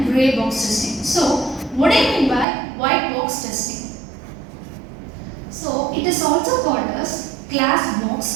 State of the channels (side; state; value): left; drops out; at 2.5 s